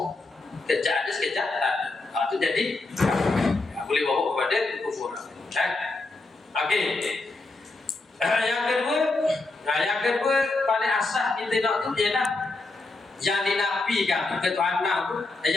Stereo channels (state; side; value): quieter; right; 3.3 dB